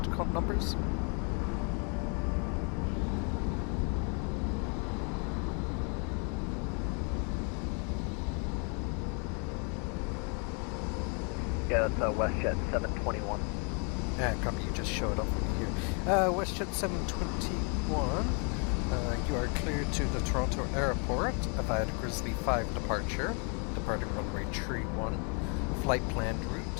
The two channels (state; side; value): quieter; right; 37.4 dB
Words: numbers? Yeah, that's WestJet 721. Copy, you just showed up here. WestJet 721, you are cleared to the Toronto airport via the Grizzly 5 departure, departing runway 31, flight planned